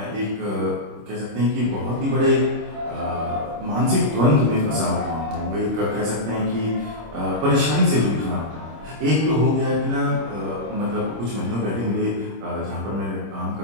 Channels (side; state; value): left; late; 26 ms